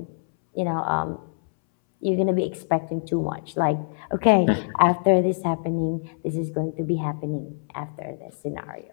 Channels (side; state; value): right; silent; 62 dB below the other